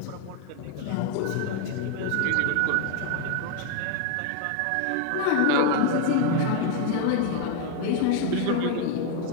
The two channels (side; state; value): both; different; correlation 0.01